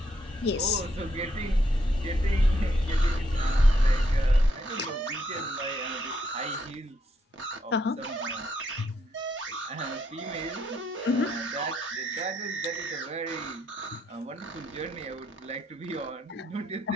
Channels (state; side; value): normal; both; correlation 0.76